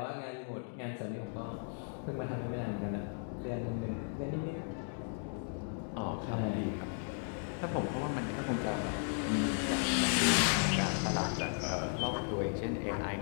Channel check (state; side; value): silent; right; 54 dB below the other